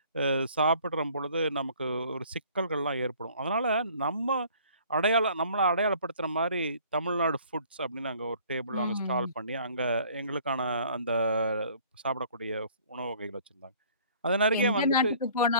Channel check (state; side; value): inverted; both; correlation -0.54